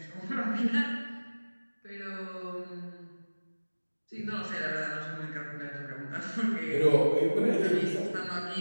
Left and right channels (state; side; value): inverted; both; correlation -1.00